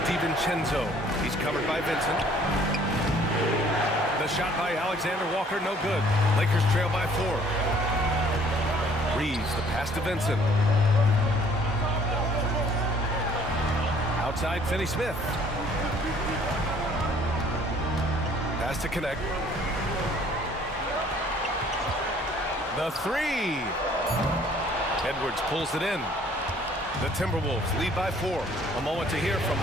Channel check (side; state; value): both; normal; correlation 0.58